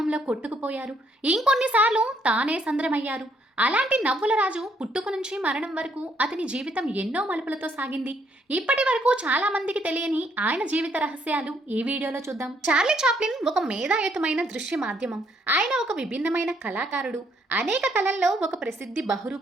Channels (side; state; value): both; normal; correlation 0.70